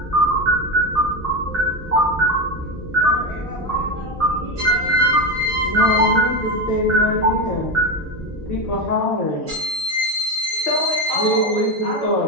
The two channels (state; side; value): normal; both; correlation 0.16